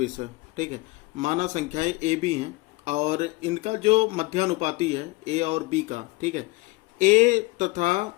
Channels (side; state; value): right; quieter; 22.4 dB